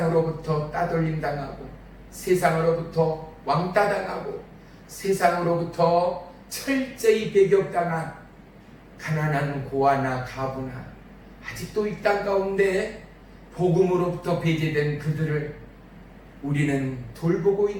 따돌림 당하고 세상으로부터 왕따 당하고 세상으로부터 철저히 배격당한 가난한 고아나 가부나 아직도 이 땅 가운데 복음으로부터 배제된 그들을 우리는 돌보고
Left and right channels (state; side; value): identical; both; correlation 1.00